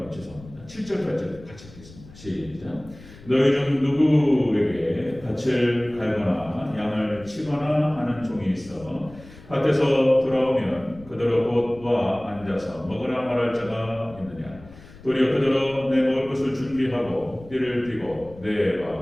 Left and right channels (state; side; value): noise; left; rumble, 20 dB below the sound